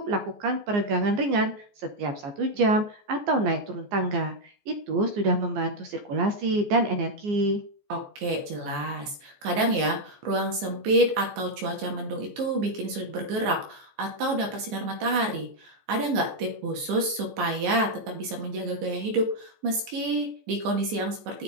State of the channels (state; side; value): late; left; 15 ms